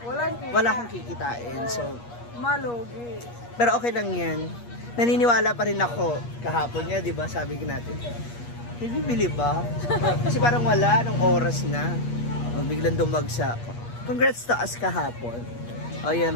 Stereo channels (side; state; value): right; late; 8.4 ms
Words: wala kang kikitain. So, malugi. Pero okay lang yan. Naniniwala pa rin ako. Kahapon niya, di ba? Sabi natin. Bibili ba? Kasi parang wala. Nung oras na. Biglang dumagsa. Congrats to us kahapon. O yan,